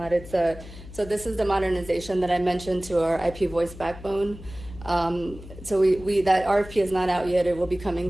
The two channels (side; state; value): left; noise; hum, 15 dB below the sound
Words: So this is the modernization that I mentioned to our IP voice backbone. So that RFP is not out yet. It will be coming